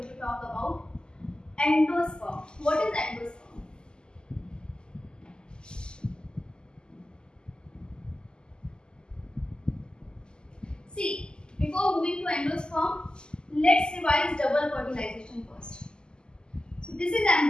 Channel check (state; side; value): late; right; 0.047 ms